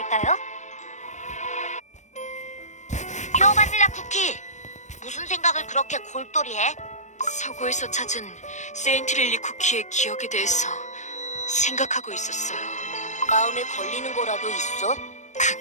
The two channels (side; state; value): right; late; 0.34 ms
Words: 퓨어 바닐라 쿠키, 무슨 생각을 그렇게 골똘히해? 서고에서 찾은 세인트릴리 쿠키의 기억에 대해서 생각하고 있었어요. 마음에 걸리는 거라도 있어?